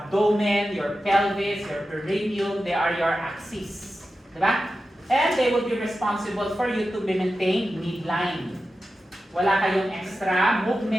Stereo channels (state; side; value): normal; both; correlation 0.92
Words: your pelvis, your perineum, they are your axes. Diba? And they will be responsible for you to maintain midline. Wala kayong extra